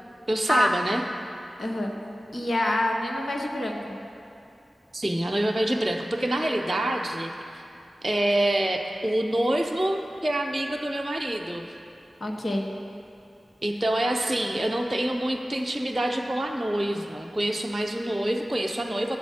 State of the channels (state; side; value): normal; both; correlation 0.95